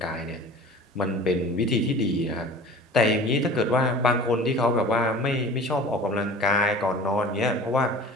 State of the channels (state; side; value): normal; both; correlation 0.41